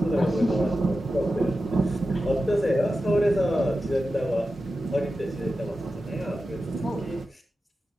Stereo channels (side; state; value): both; normal; correlation 0.92